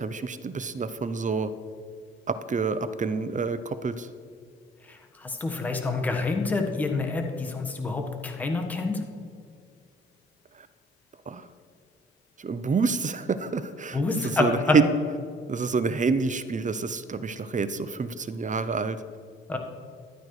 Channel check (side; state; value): both; normal; correlation 0.56